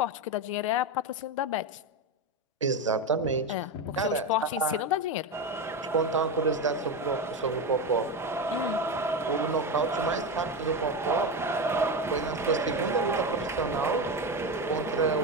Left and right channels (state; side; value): normal; both; correlation 0.16